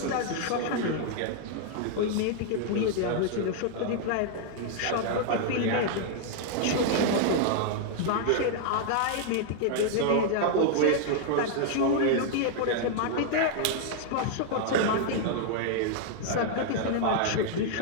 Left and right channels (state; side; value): different; both; correlation -0.01